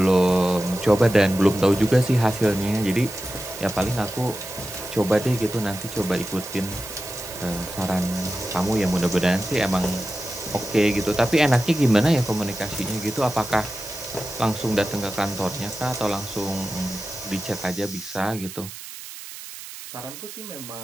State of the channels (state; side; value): noise; right; hiss, 13 dB below the sound